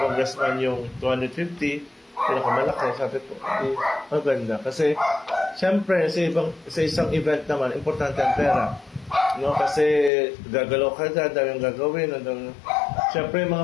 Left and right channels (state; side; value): drops out; right; at 10.1 s